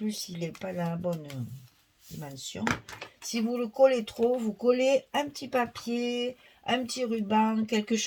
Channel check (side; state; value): both; identical; correlation 1.00